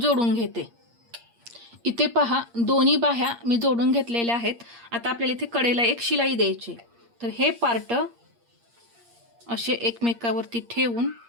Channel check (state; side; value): late; left; 8.6 ms